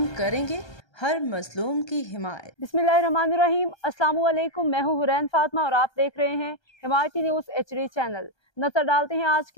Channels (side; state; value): right; late; 1.3 ms